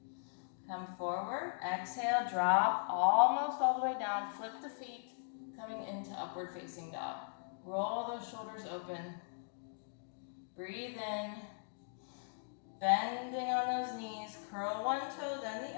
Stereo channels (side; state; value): right; silent; digital silence